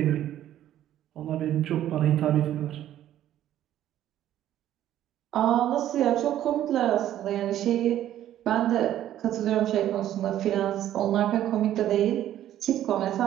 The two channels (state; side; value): quieter; left; 12.1 dB